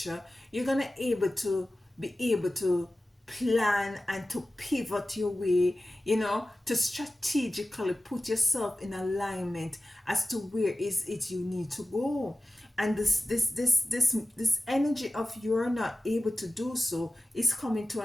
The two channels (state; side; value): normal; both; correlation 0.96